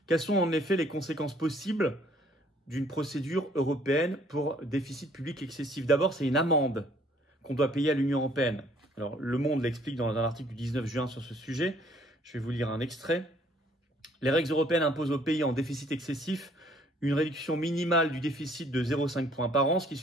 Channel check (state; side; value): normal; both; correlation 0.61